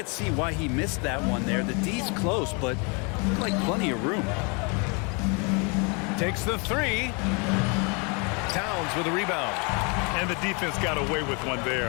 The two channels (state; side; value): quieter; right; 32.9 dB